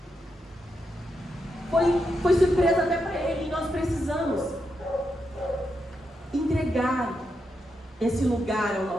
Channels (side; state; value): both; normal; correlation 0.84